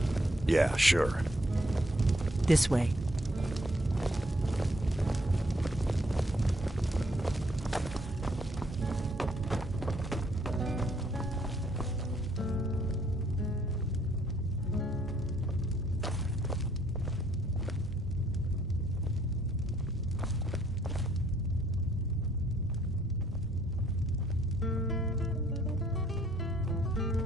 Yeah, sure. This way.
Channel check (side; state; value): both; normal; correlation 0.67